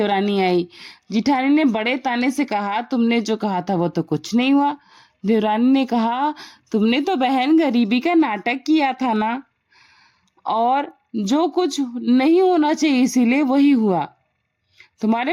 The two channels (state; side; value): identical; both; correlation 1.00